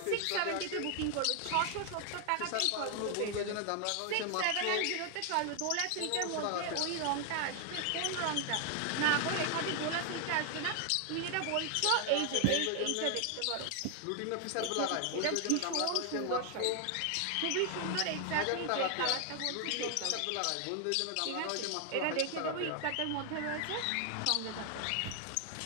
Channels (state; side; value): different; both; correlation 0.00